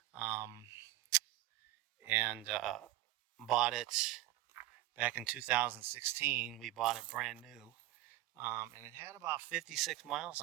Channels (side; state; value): left; quieter; 15.8 dB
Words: and bought it back in 2016. We bought it brand new, and it had about 56 miles